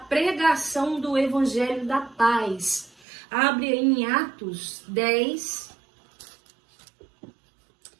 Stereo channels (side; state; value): left; drops out; at 3.0 s